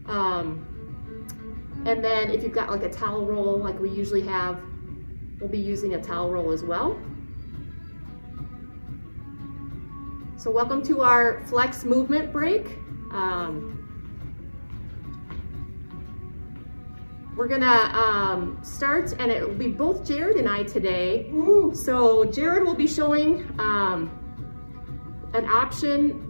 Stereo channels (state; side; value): inverted; both; correlation -1.00